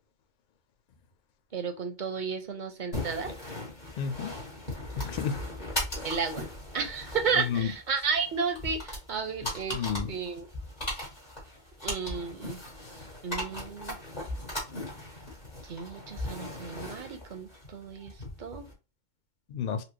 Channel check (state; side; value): late; right; 2.2 ms